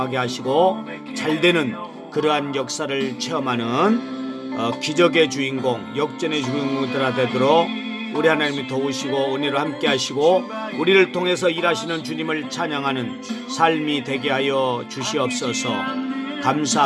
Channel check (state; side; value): identical; both; correlation 1.00